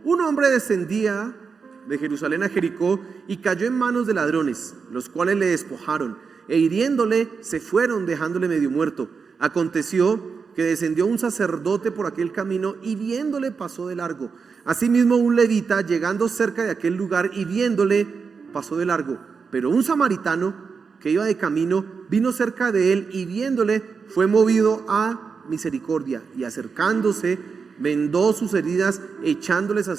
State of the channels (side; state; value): left; quieter; 5.4 dB